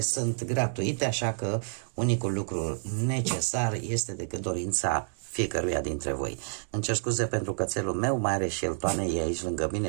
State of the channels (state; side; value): silent; left; 59 dB below the other